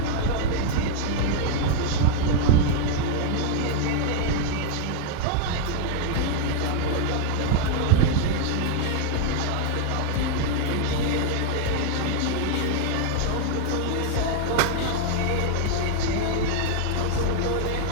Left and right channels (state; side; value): different; both; correlation 0.00